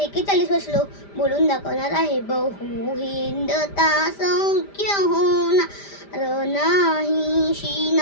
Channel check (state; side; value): late; right; 5.0 ms